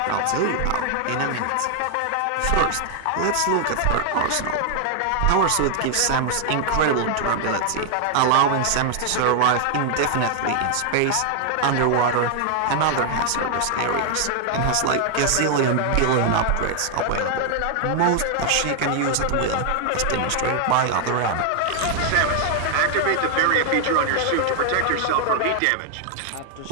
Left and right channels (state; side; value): different; both; correlation 0.00